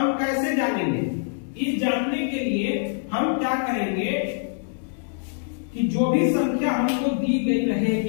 कैसे जानेंगे? इस जानने के लिए हम क्या करेंगे कि जो भी संख्या हमको दी गई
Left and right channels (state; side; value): silent; right; digital silence